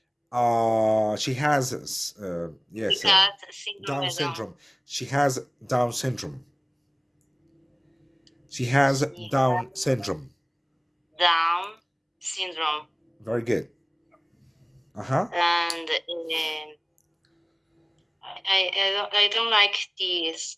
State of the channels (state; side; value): identical; both; correlation 1.00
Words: She has yes, She has síndrome Down de Down. syndrome. She has Down syndrome. She has She Down syndrome. Down syndrome, Very good. Uh-huh. and I don't like this